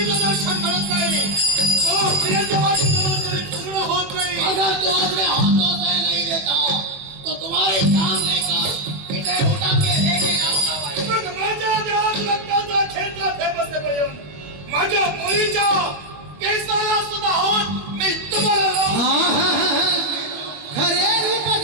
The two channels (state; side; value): late; left; 21 ms